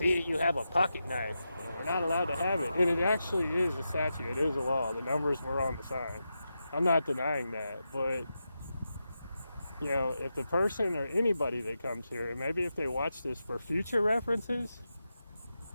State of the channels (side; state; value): both; inverted; correlation -0.89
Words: you have a pocket knife. You're not allowed to have it. And it actually is a statute. It is a law. The numbers were on the sign. I'm not denying that. But, you know, if the person or anybody that comes here, and maybe if they watch this for future references,